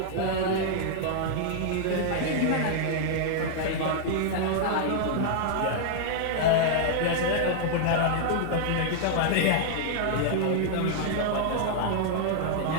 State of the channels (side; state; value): both; different; correlation -0.01